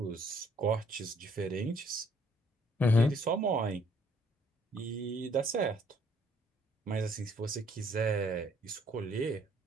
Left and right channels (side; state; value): both; normal; correlation 0.64